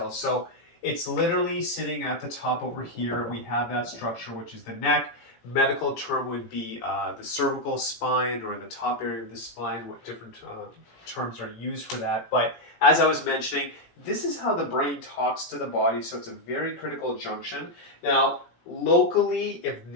So it's literally sitting at the top over here. We have that structure, which is the neck. Medical term would be the cervical spine or the top area of the spine. What different terms are used for that. But as I was mentioning, this is how the brain talks to the body. So it's a very critical junction. Now, locally, if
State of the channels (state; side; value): late; right; 17 ms